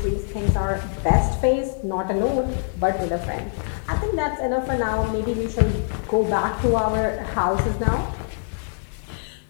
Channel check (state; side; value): silent; right; digital silence